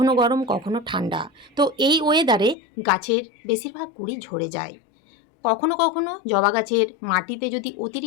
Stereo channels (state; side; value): drops out; right; at 2.6 s